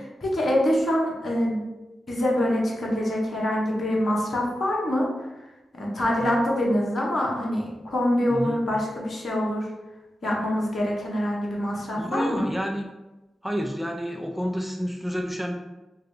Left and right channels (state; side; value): normal; both; correlation 0.90